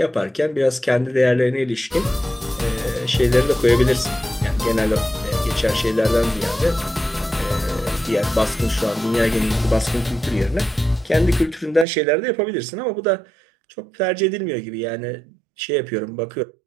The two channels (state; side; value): drops out; left; at 11.9 s